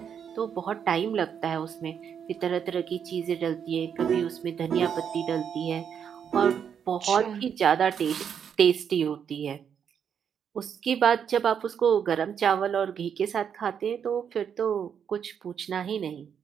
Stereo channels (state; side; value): quieter; left; 7.8 dB